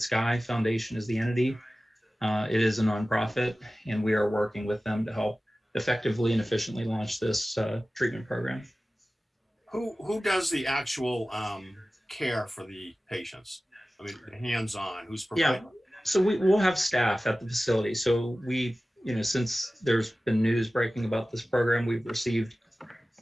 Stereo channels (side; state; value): both; normal; correlation 0.96